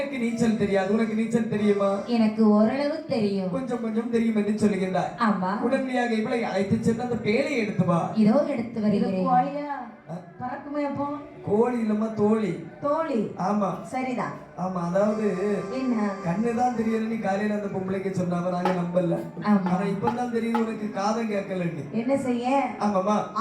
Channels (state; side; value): identical; both; correlation 1.00